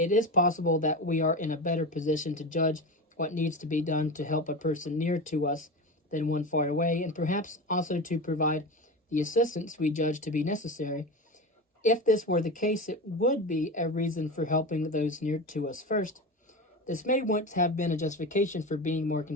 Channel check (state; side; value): normal; both; correlation 0.25